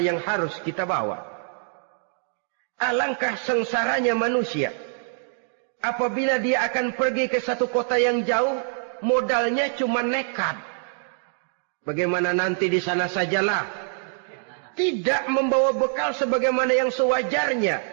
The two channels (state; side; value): silent; left; digital silence